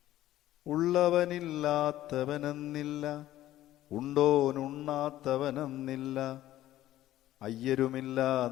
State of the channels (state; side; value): quieter; right; 14.1 dB